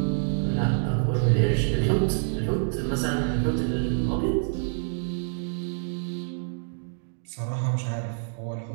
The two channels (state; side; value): silent; left; digital silence